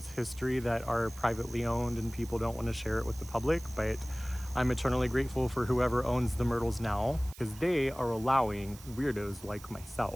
history that are privately owned and people don't want to share it with the public. But I'm eternally grateful for whoever owns the Myrtles now, because they are allowing weirdos like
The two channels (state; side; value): noise; right; hiss, 19 dB below the sound